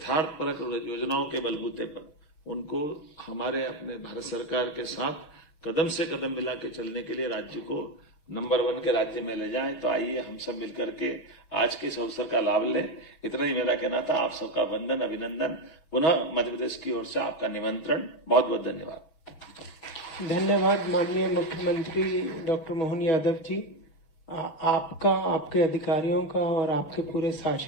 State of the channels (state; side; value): late; right; 6.5 ms